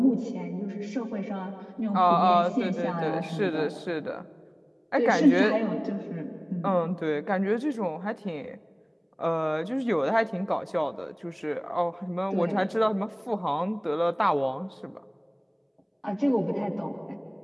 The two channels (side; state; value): both; identical; correlation 1.00